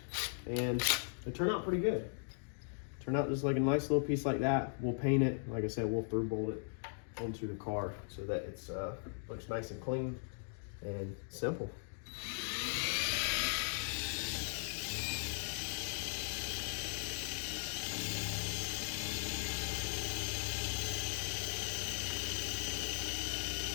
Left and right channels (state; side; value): silent; right; digital silence